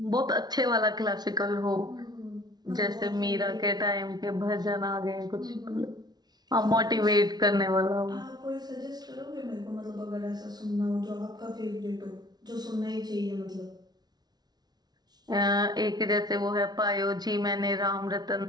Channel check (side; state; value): left; late; 0.19 ms